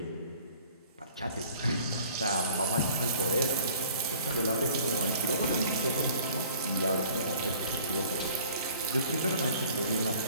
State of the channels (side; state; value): both; inverted; correlation -0.51